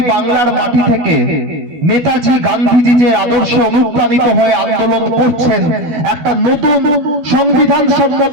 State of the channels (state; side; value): late; left; 12 ms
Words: বাংলার মাটি থেকে নেতাজি গান্ধীজি যে আদর্শে অনুপ্রাণিত হয়ে আন্দোলন করছেন, একটা নতুন সংবিধান